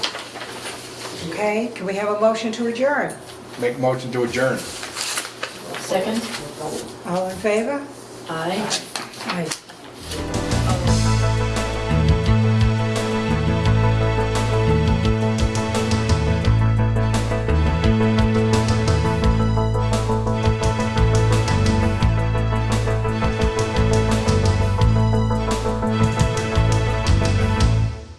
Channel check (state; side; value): identical; both; correlation 1.00